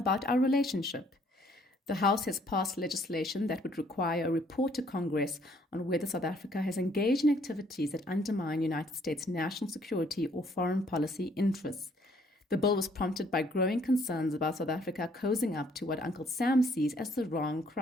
our relationship. The House has passed legislation that would require a report to Congress on whether South Africa has engaged in activities that undermine United States national security or foreign policy interests. The bill was prompted by growing concerns about South Africa cozying up to what Uncle Sam sees as the wrong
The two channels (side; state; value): both; normal; correlation 0.64